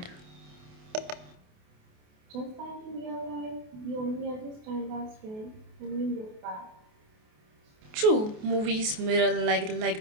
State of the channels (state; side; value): late; left; 28 ms